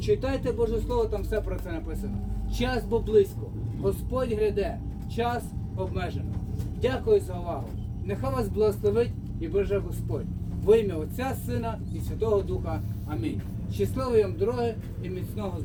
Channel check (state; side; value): identical; both; correlation 1.00